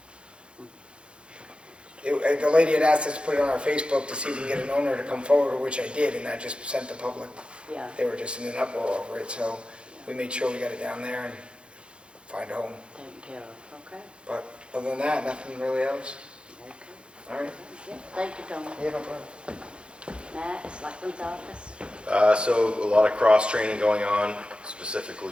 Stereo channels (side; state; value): left; late; 0.056 ms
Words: The lady had asked us to put it on our Facebook to see if we can get an owner to come forward, which I did, and that just sent the public. Yeah. They were just in an uproar over it, so we made sure we got it down there and find a home. Taken care of, okay. But other than that, nothing really else. Okay. All right. Yeah, thank you, Tony. Yeah, no problem. Matt, Selectmen's office? So a lot of cross-training going on,